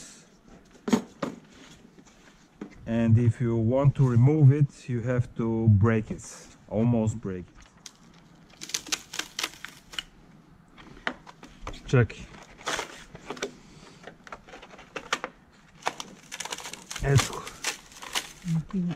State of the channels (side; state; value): both; identical; correlation 1.00